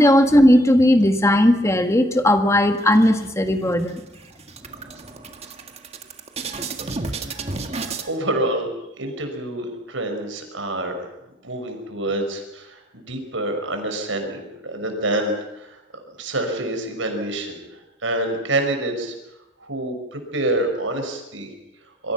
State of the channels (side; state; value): both; normal; correlation 0.63